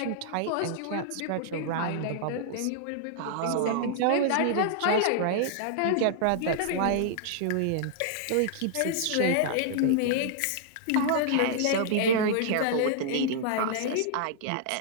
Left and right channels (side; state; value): both; different; correlation -0.01